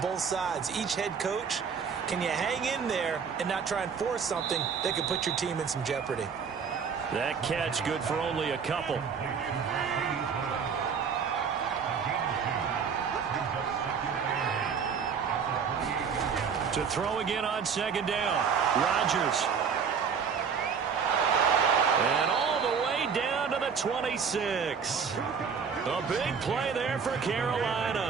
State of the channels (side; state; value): left; quieter; 6.4 dB